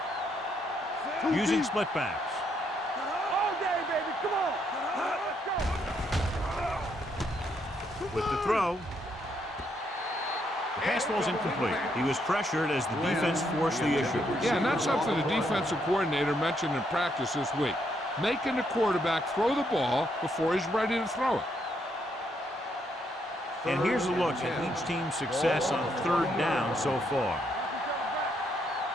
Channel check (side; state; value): both; normal; correlation 0.75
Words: go. Using split backs. All day, baby. Come on. Let's go. With the throw. The pass ball's incomplete. He was pressured as the defense forced the issue. Yeah, and that's something the defensive coordinator mentioned in practice this week. Making the quarterback throw the ball before he's ready to throw it. And here's a look at each team's success on third down so far.